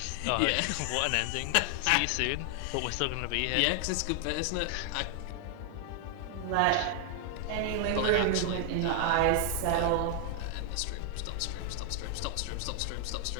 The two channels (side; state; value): both; different; correlation 0.00